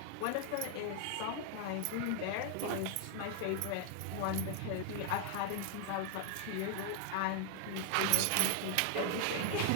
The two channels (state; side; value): different; both; correlation 0.00